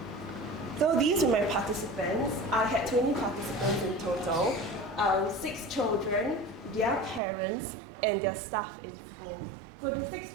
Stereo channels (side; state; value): left; drops out; at 7.2 s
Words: So these were my participants. I had 20 participants in total, 6 children, their parents, and their staff in school. So the 6